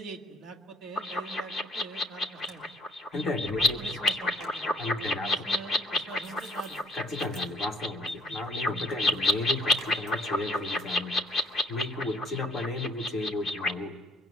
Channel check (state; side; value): normal; both; correlation 0.60